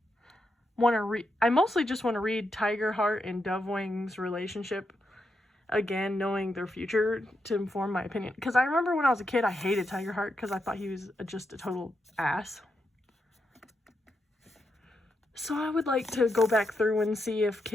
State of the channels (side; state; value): both; normal; correlation 0.84